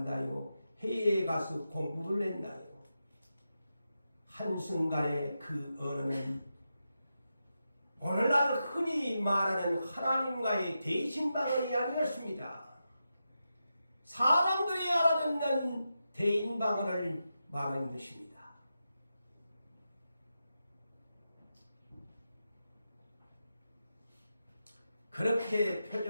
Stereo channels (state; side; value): inverted; both; correlation -0.89